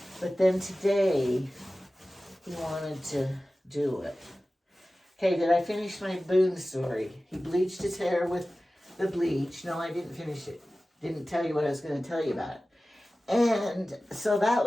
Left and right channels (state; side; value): normal; both; correlation 0.96